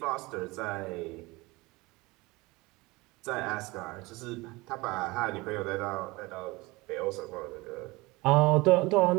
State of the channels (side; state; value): left; quieter; 22.9 dB